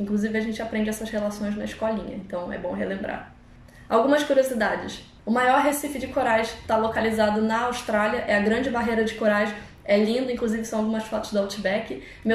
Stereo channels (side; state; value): both; identical; correlation 1.00